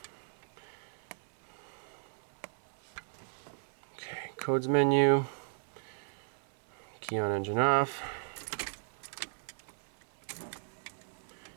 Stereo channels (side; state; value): left; silent; 54 dB below the other